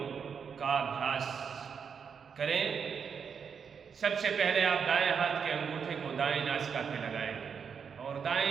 का अभ्यास करें। सबसे पहले आप दाएं हाथ के अंगूठे को दाएं नासिका पे लगाएंगे और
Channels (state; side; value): quieter; left; 6.6 dB